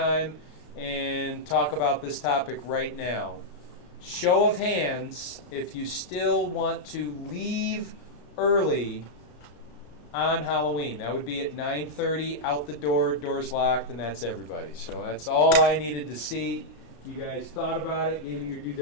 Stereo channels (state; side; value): late; right; 34 ms